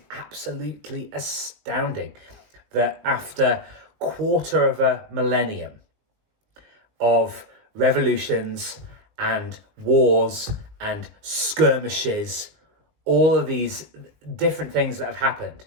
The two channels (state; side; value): late; left; 19 ms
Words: absolutely astounding that after quarter of a millennium of revolutions and wars and skirmishes, all of these different things that have happened,